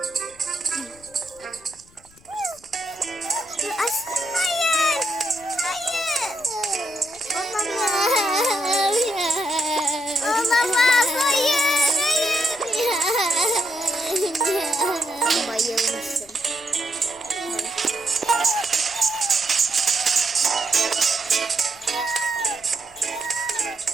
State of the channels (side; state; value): left; noise; rumble, 27 dB below the sound